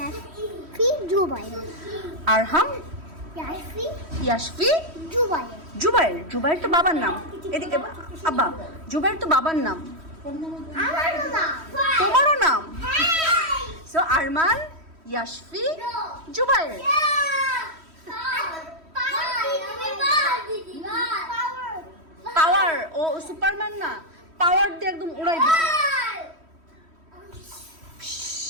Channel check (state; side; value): late; left; 3.1 ms